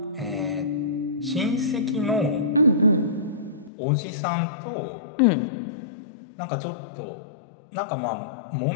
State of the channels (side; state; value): right; drops out; at 3.7 s